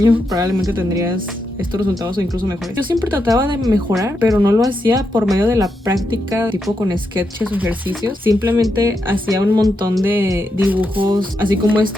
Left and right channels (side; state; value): both; normal; correlation 0.84